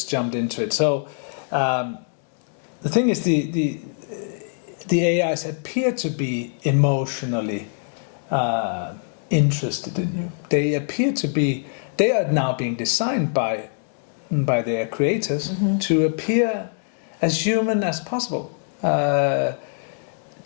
jumped into it. So the thing is, the AIs appear to be emotionally interested in you. They appear to be. They are now being designed by their creators to appear as human as possible.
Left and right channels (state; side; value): silent; right; digital silence